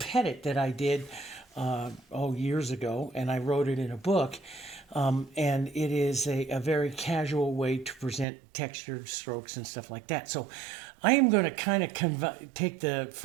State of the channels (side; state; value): left; drops out; at 8.2 s